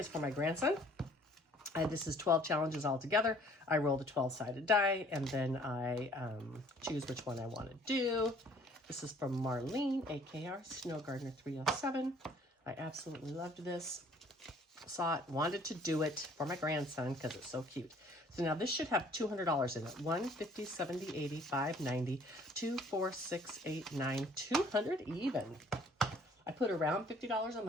for my grandson. And this is 12 challenges all together. I roll the 12-sided die, and then I choose which one I want to do. This is from Marlene, AKR Snow Gardener 307. I absolutely loved this. Saw it, wanted to do it for my grandson because it's so cute. So now this should have $200 in it. 1, 50, 70, 80, 5, 90, 2, 4, 6, 8, 9, 200 even. I put around $50 a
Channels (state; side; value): normal; both; correlation 0.57